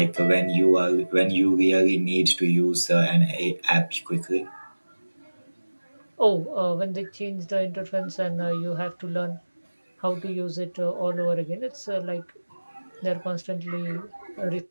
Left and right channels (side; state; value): both; inverted; correlation -1.00